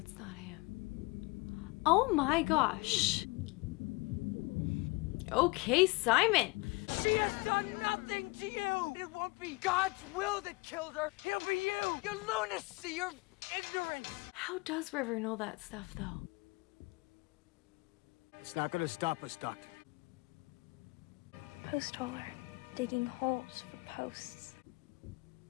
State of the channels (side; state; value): right; quieter; 26.1 dB